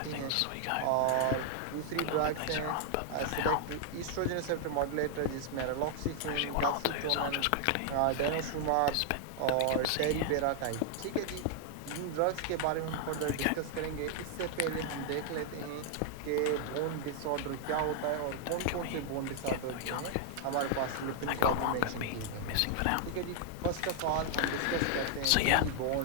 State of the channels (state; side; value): different; both; correlation 0.00